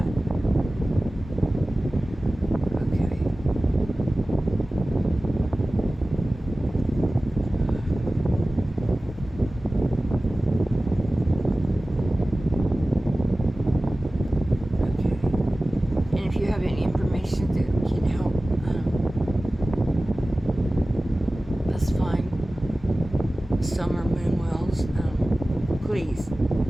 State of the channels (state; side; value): normal; both; correlation 0.97